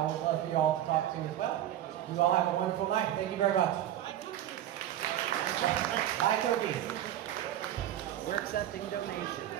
would love for you all to talk to as well. You all have a wonderful night. Thank you very much. Bye, cookies. We're accepting donations.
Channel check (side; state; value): left; quieter; 12.1 dB